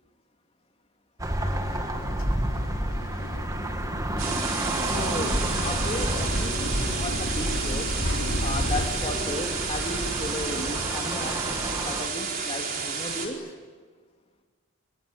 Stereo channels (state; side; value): normal; both; correlation 0.49